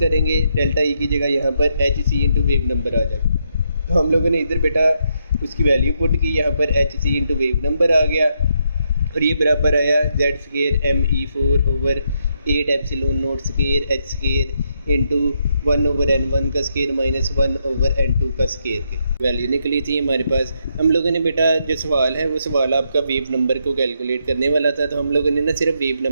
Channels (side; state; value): both; inverted; correlation -0.78